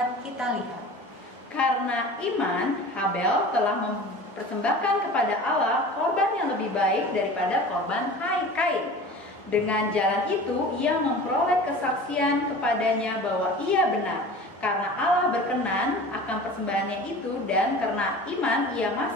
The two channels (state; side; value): normal; both; correlation 0.38